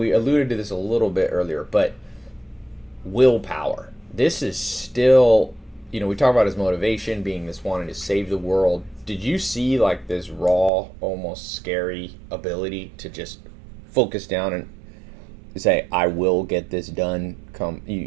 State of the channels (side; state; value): left; drops out; at 10.7 s